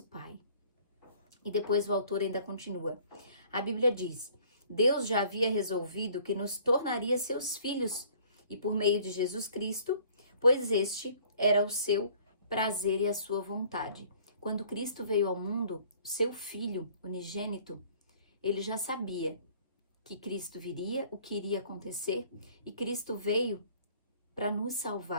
Pai. E depois o autor ainda continua. A Bíblia diz: Deus já havia resolvido que nos tornaria seus filhos, e por meio de Jesus Cristo, pois este era o seu prazer e a sua vontade. Quando Cristo veio ao mundo, seu filho unigênito, ele já sabia que Cristo viria, o que iria acontecer, e Cristo veio para nos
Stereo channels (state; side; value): inverted; both; correlation -0.55